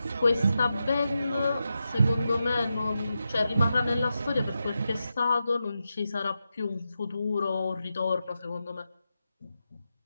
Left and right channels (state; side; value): inverted; both; correlation -0.89